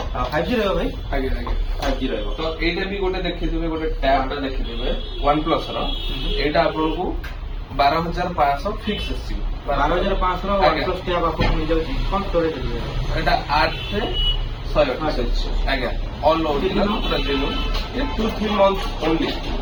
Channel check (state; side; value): identical; both; correlation 1.00